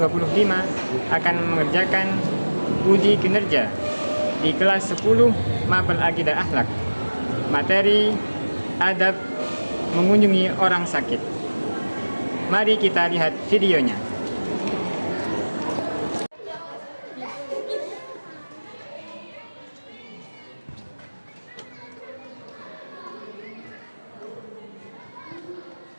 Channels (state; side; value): inverted; both; correlation -1.00